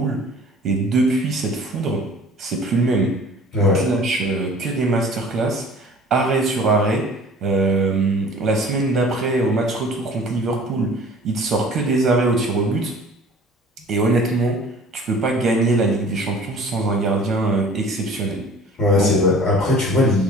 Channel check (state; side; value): normal; both; correlation 0.47